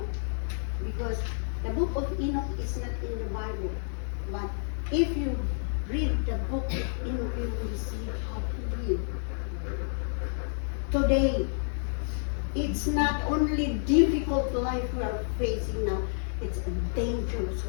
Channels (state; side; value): silent; right; digital silence